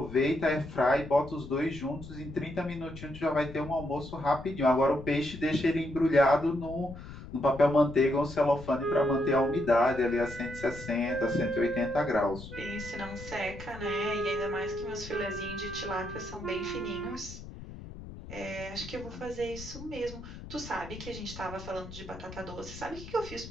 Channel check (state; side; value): noise; left; rumble, 13 dB below the sound